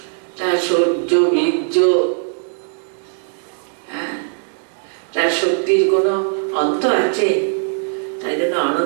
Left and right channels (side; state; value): left; silent; 64 dB below the other